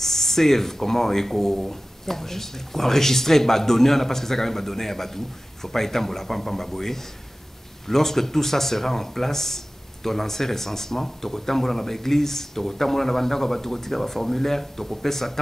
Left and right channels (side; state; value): both; normal; correlation 0.96